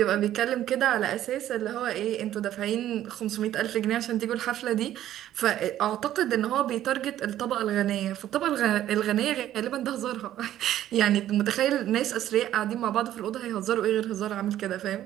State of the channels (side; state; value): left; quieter; 12.4 dB